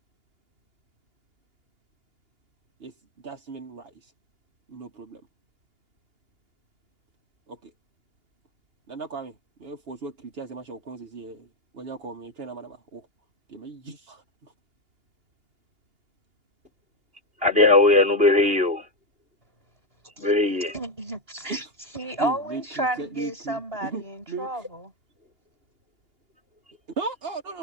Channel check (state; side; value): late; left; 2.8 ms